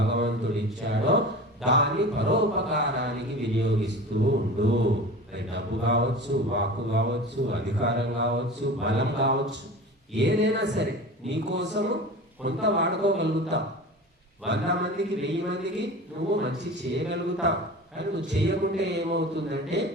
ఇచ్చాడో దాన్ని పరోపకారానికి వినియోగిస్తూ ఉండు. అది డబ్బు కావచ్చు, వాక్కు కావచ్చు, అధికారం కావచ్చు, బలం కావచ్చు, ఏదైనా సరే నీకోసము కొంత వాడుకోగలుగుతావు. 100 మందికి, 1000 మందికి నువ్వు మంచి చేయగలుగుతావు. కానీ నువ్వు చేయకుంటే ఏమవుతుందంటే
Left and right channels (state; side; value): normal; both; correlation 0.35